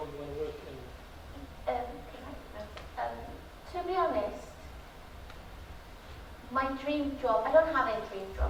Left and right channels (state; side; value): identical; both; correlation 1.00